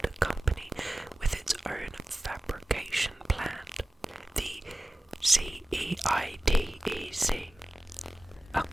company with its own fabrication plant, the CEITEC.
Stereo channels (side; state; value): both; normal; correlation 0.96